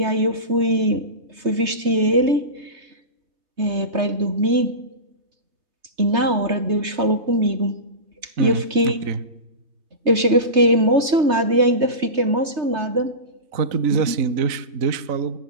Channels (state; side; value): late; left; 3.3 ms